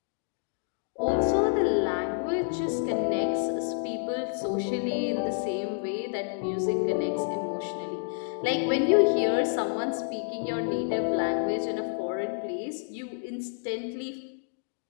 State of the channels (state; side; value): silent; right; digital silence